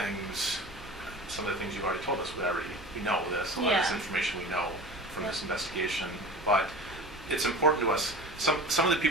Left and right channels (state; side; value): normal; both; correlation 0.35